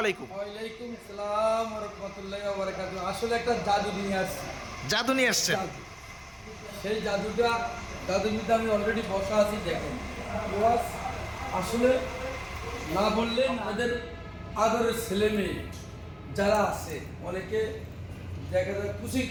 আলাইকুম। ওয়ালাইকুম আসসালাম ওয়া রাহমাতুল্লাহি ওয়া বারাকাতুহু। আসলে একটা জাদু নিয়ে আসছি। জাদু নিয়ে আসছেন? জাদু। সেই জাদুর মধ্যে আমি অলরেডি বসা আছি, দেখেন। ওয়াজ আসলে না বললে আমাদের আদরের ছেলে মেয়ে যারা আছে, অনেকে দেখা যায় খুশি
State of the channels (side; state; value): both; identical; correlation 1.00